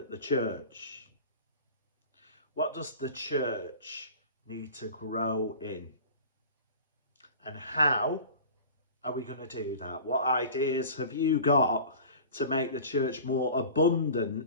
the church. What does the church need to grow in? And how are we going to do that? What ideas have you got to make the church more abundant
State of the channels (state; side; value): inverted; both; correlation -0.39